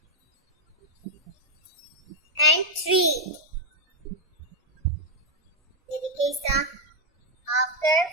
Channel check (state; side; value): normal; both; correlation 0.02